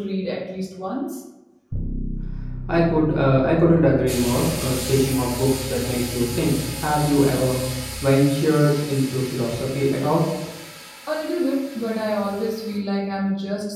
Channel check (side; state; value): both; identical; correlation 1.00